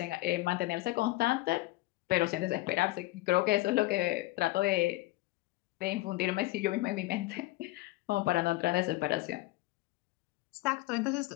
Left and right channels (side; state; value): right; quieter; 18.8 dB